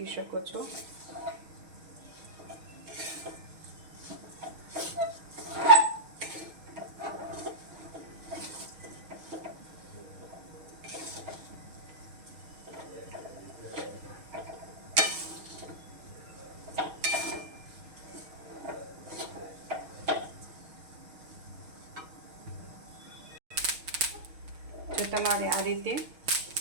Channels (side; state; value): left; late; 6.4 ms